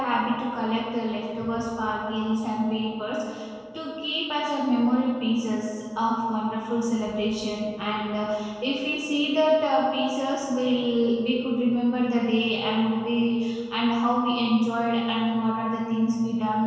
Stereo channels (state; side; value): identical; both; correlation 1.00